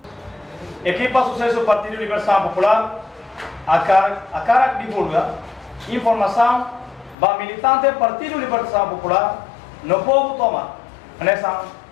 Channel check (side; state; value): right; drops out; at 7.2 s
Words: Equipa sucesso Partido Libertação Popular, a cara divulga informação para militante Partido Libertação Popular no povo toma. Nessa